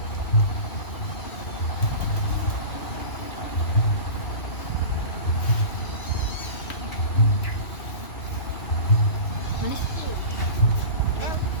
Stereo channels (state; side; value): late; right; 2.6 ms